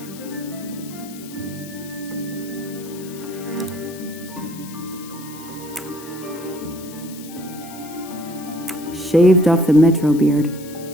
Shaved off the Metro beard.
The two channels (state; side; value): noise; left; hiss, 16 dB below the sound